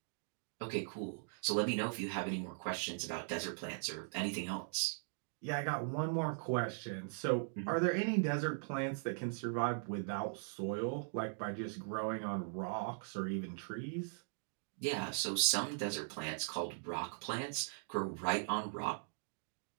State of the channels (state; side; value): silent; left; digital silence